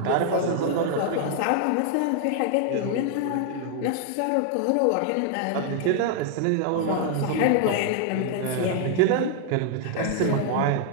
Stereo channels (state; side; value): different; both; correlation 0.00